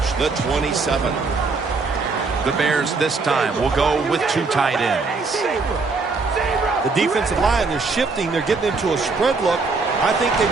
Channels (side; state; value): left; quieter; 4.1 dB